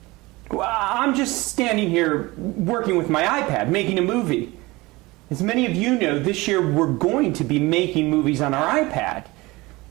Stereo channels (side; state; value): left; quieter; 21.9 dB